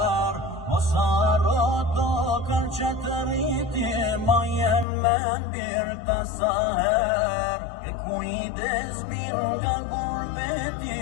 Osa roto kërë që të rriti, ma jem me birë të saher. E kujdes birë nga gurbeti,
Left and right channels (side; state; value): right; drops out; at 4.9 s